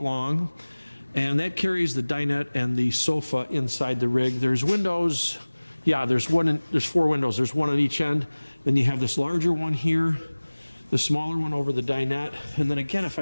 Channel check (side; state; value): both; inverted; correlation -1.00